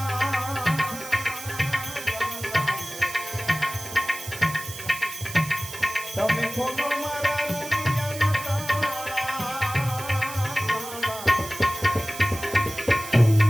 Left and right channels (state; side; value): noise; right; hiss, 11 dB below the sound